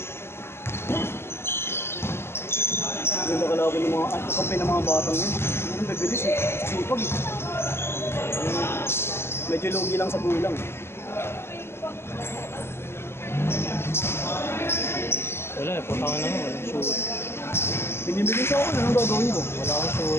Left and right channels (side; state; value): right; late; 0.12 ms